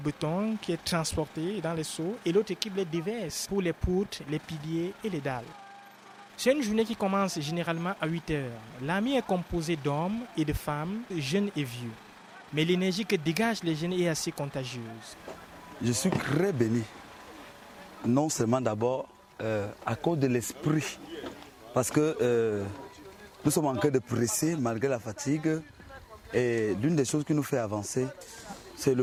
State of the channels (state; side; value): identical; both; correlation 1.00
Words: qui est transporté dans les seaux et l'autre équipe les déverse pour les poutres, les piliers et les dalles. C'est une journée qui commence généralement à 8 heures. L'armée est composée d'hommes et de femmes, jeunes et vieux. Mais l'énergie que dégagent les jeunes est assez contagieuse. Je suis très béni. Non seulement d'abord à cause de l'esprit, parce que nous sommes en train de presser malgré la fatigue. Et l'une des choses qui nous fait avancer, c'est le